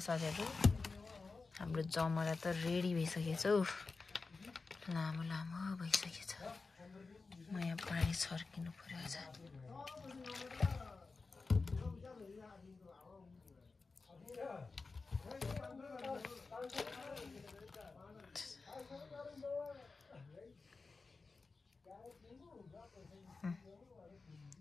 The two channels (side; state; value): right; quieter; 4.1 dB